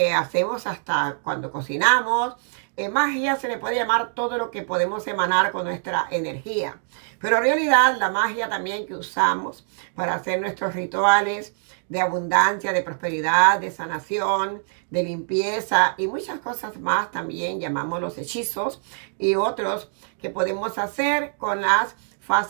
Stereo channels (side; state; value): left; silent; digital silence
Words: hacemos hasta cuando cocinamos. Magia se le puede llamar todo lo que podemos emanar con nuestra energía. Pero en realidad la magia también que usamos para hacer nuestros rituales de abundancia, de prosperidad, de sanación, de limpieza y muchas cosas más también llamamos los hechizos y otros que podemos hacer con las